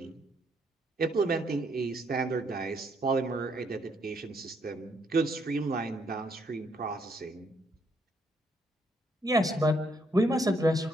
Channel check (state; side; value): normal; both; correlation 0.72